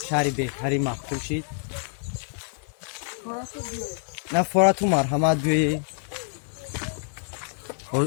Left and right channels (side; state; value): right; silent; 58 dB below the other